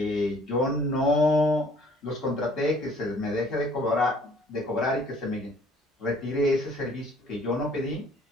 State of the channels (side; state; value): both; normal; correlation 0.57